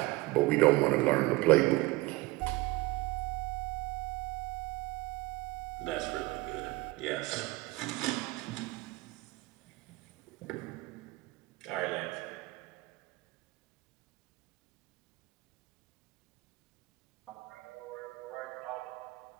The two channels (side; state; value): left; quieter; 21.2 dB